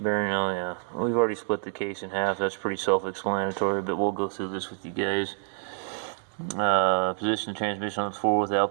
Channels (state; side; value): silent; left; 56 dB below the other